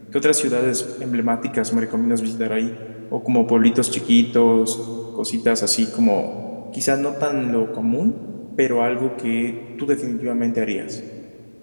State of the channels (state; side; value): inverted; both; correlation -1.00